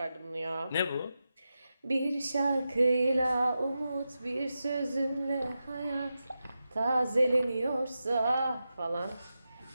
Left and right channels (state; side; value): inverted; both; correlation -0.90